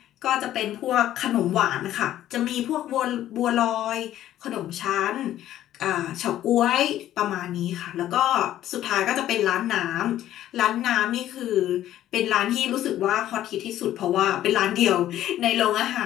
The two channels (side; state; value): right; quieter; 12.7 dB